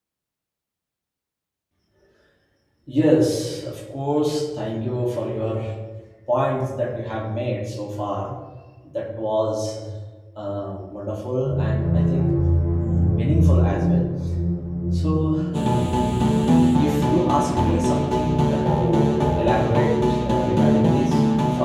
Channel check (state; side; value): identical; both; correlation 1.00